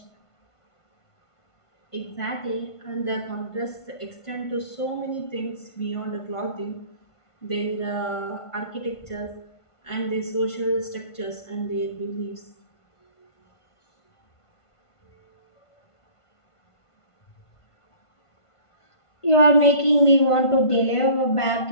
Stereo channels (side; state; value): right; late; 1.5 ms